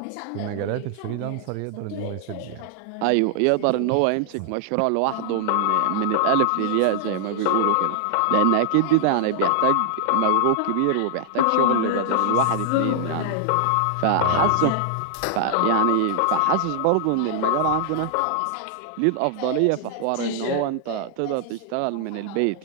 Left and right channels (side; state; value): both; different; correlation 0.00